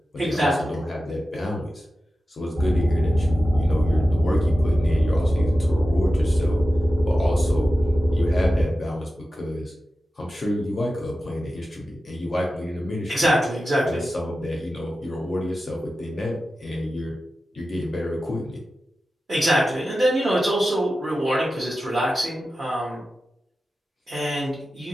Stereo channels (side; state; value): both; normal; correlation 0.93